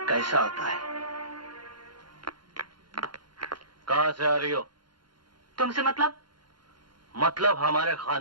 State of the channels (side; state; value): left; late; 0.72 ms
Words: कैसा आता है। कहां से आ रही हो? तुमसे मतलब हमारे